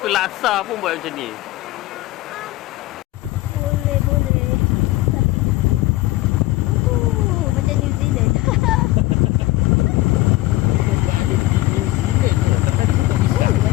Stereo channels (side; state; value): right; quieter; 18.2 dB